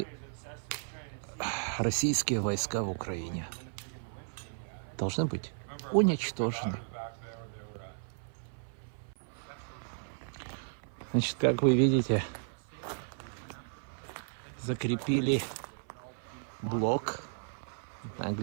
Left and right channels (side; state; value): left; silent; 55 dB below the other